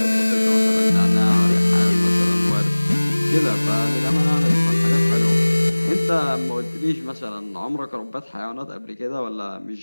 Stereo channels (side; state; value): both; inverted; correlation -1.00